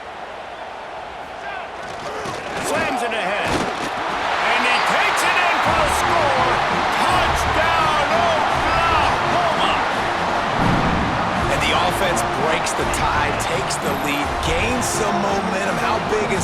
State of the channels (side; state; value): both; identical; correlation 1.00